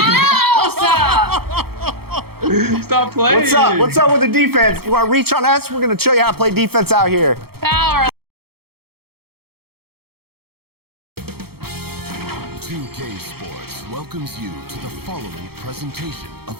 else. Stop playing. What's up? What's up with the defense? You want to reach on us? We're going to show you how to play defense out here. Power. 2K Sports welcomes you to the following presentation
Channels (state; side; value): late; left; 0.95 ms